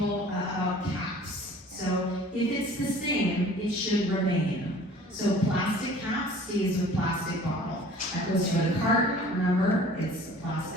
about caps. So if it's the same, it should remain. So plastic cap stays with plastic bottle. That goes for the carton, remember, it's a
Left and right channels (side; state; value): both; normal; correlation 0.48